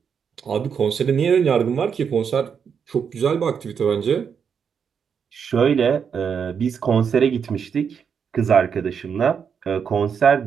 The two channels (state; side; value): quieter; left; 6.9 dB